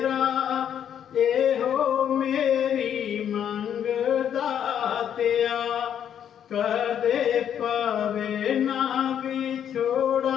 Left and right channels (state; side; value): quieter; right; 9.2 dB